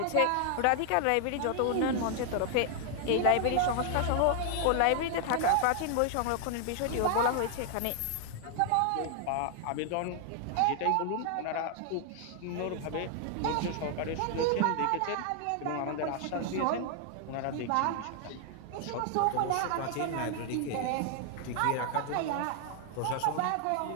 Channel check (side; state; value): both; different; correlation 0.00